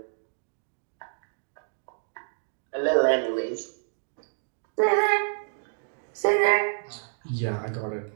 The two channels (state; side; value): silent; left; digital silence